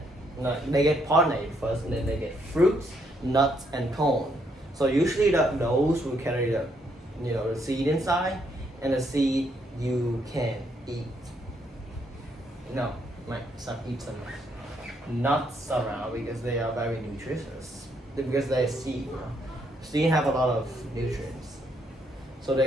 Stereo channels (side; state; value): both; normal; correlation 0.73